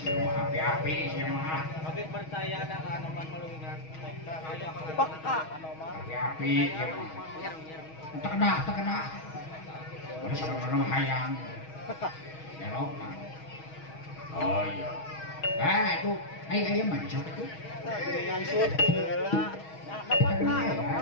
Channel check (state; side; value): late; right; 6.3 ms